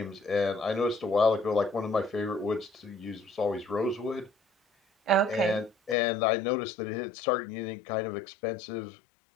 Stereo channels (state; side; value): drops out; right; at 6.0 s